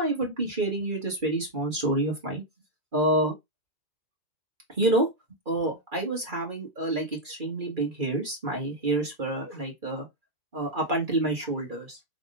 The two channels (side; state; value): left; late; 2.4 ms